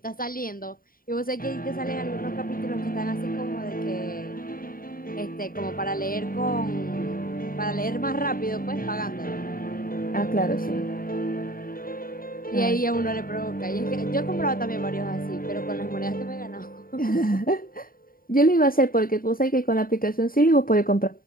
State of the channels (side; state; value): right; late; 0.41 ms